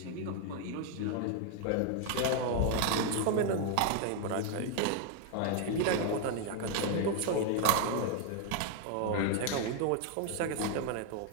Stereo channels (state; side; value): different; both; correlation 0.01